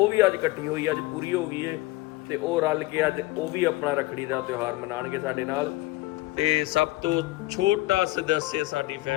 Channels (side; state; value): right; quieter; 20.1 dB